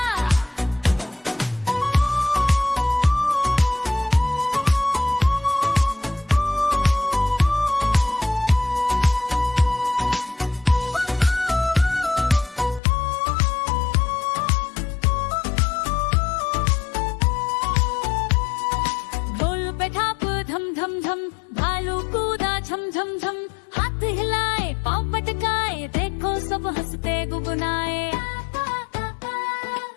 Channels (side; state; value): right; drops out; at 12.8 s